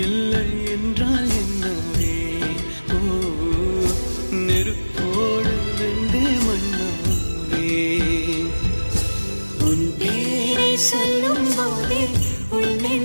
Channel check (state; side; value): inverted; both; correlation -1.00